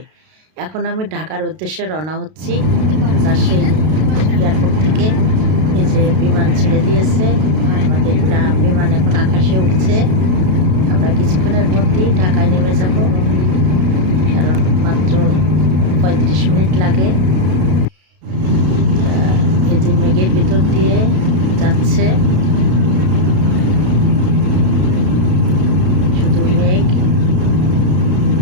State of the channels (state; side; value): late; left; 32 ms